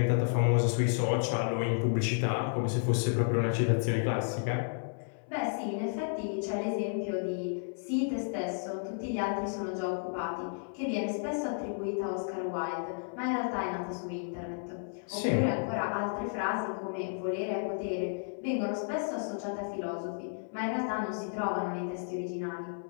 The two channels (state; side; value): silent; right; 56 dB below the other